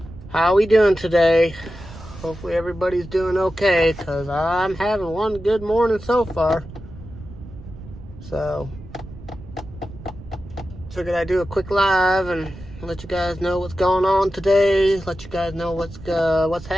How we doing today? Hopefully everybody's doing okay, because I'm having one good morning so far. So figured I'd do a quick live and let you guys know what's going on today. Let you guys know what's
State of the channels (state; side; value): noise; right; rumble, 16 dB below the sound